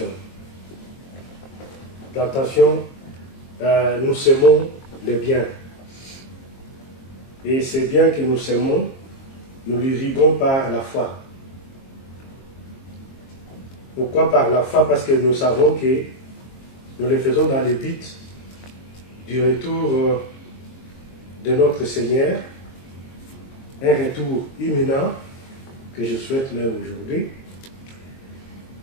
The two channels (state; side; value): late; right; 22 ms